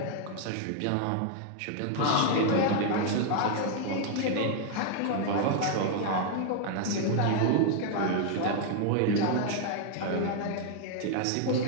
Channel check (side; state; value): both; different; correlation 0.00